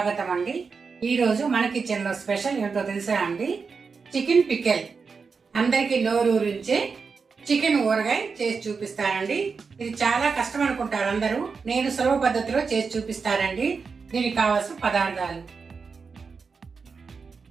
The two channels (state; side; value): quieter; left; 5.1 dB